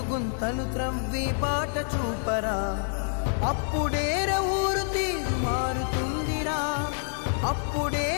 గుంతలు త్రవ్వి బాట చూపరా. అప్పుడేర ఊరు తీరు మారుతుందిరా,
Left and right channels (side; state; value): right; silent; digital silence